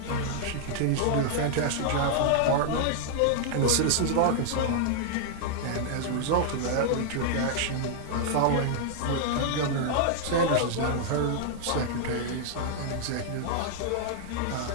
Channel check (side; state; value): both; different; correlation -0.01